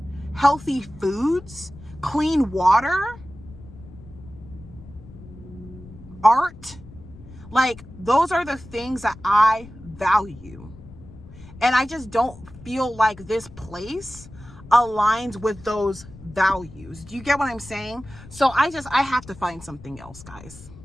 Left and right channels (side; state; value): left; noise; rumble, 18 dB below the sound